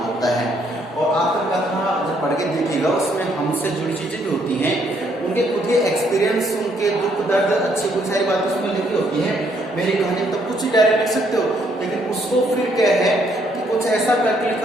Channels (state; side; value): normal; both; correlation 0.70